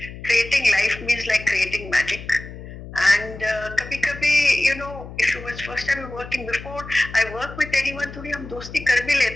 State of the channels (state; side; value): noise; left; hum, 13 dB below the sound